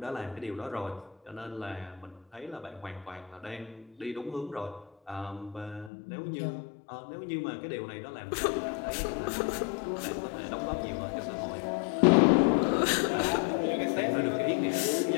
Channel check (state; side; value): drops out; right; at 5.9 s